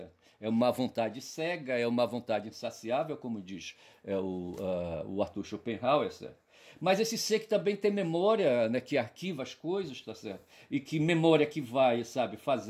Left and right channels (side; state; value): both; identical; correlation 1.00